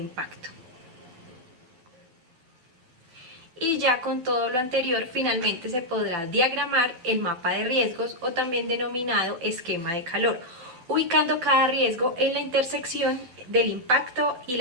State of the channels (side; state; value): left; late; 12 ms